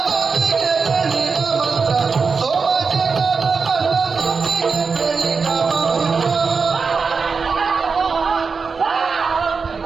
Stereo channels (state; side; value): quieter; left; 5.0 dB